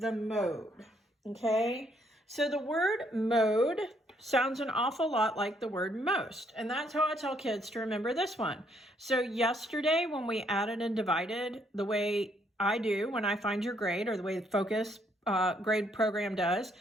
mode, okay? So the word mode sounds an awful lot like the word most, and that's how I tell kids to remember this one. So yesterday when we added and divided the way I do when I find your grade, or the way the Focus grade program does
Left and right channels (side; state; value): both; normal; correlation 0.70